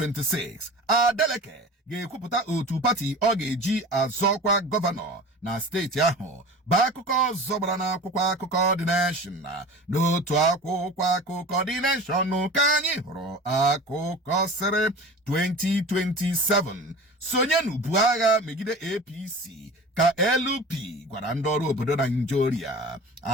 Adeleke ga-ekwupụta otu pati ọ ga-eji azọkwa gọvanọ na steeti ahụ bụ akụkọ zọbara na akwụkwọ akụkọ The Nation n'otu akwụkwọ akụkọ The Nation ka anyị hụrụ akụkọ sịrị 2027 sonye n'ubu agha megide APC ka LP gwara ndị ọrụ obodo Nigeria.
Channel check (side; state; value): both; normal; correlation 0.37